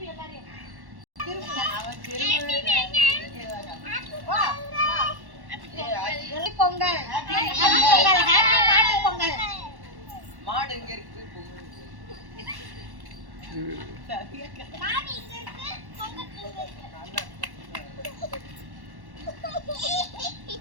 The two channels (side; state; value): left; late; 1.1 ms